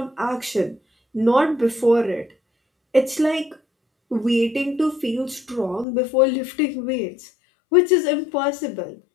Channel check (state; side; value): drops out; right; at 5.9 s